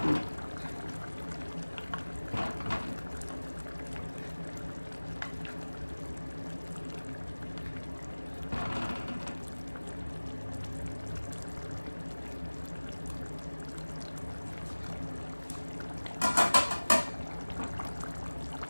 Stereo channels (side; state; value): both; inverted; correlation -1.00